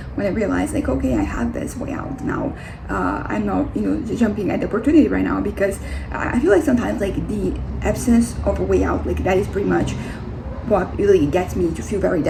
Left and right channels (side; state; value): both; identical; correlation 1.00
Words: when I realized like, okay, I have this way out now. I'm not jumping at the opportunity right now, because I feel like sometimes like the absence of a way out, like that is pretty much what really gets me to feel very